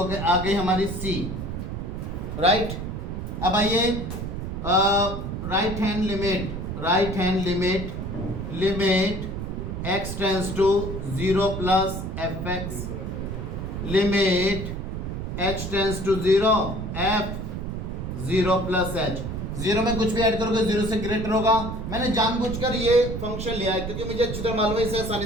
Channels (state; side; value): noise; right; rumble, 5 dB below the sound